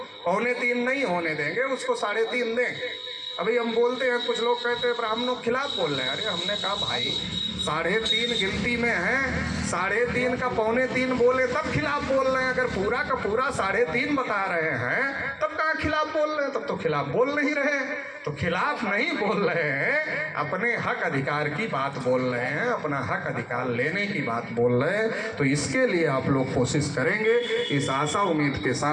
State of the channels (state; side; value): identical; both; correlation 1.00